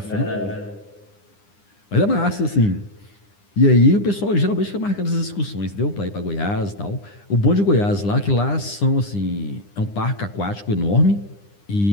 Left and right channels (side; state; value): right; late; 9.9 ms